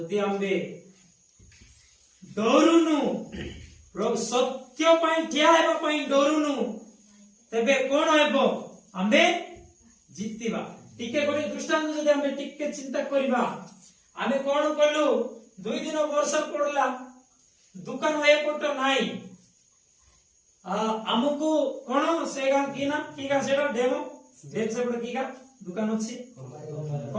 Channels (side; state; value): both; identical; correlation 1.00